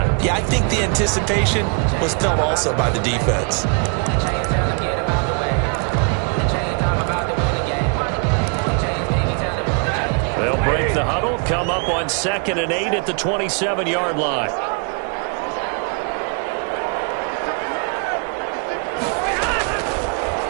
Yeah, I think the anticipation was felt also by the defense. They'll break the huddle, come up on 2nd and 8 at the 27-yard line.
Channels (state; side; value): quieter; left; 38.9 dB